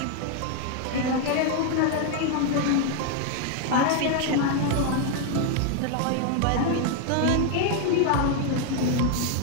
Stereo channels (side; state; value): both; different; correlation 0.00